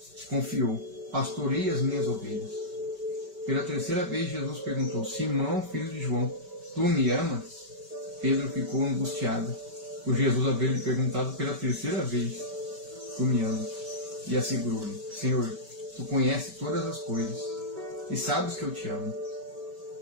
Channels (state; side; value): late; left; 5.2 ms